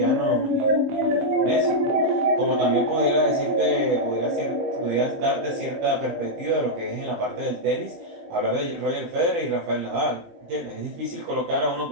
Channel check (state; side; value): late; left; 17 ms